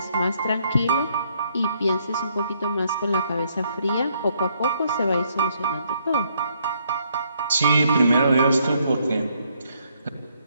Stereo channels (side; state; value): both; inverted; correlation -0.70